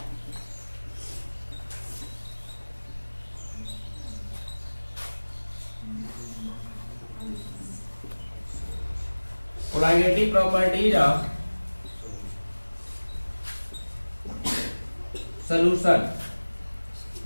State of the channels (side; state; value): both; inverted; correlation -1.00